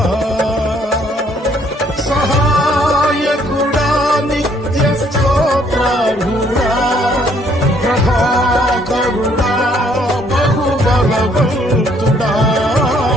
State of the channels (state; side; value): normal; both; correlation 0.65